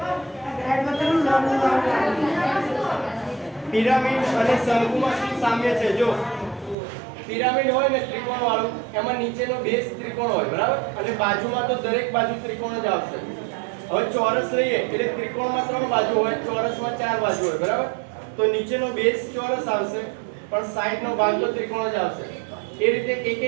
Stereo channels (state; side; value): drops out; left; at 6.8 s